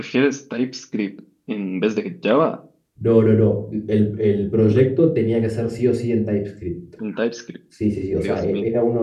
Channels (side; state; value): both; identical; correlation 1.00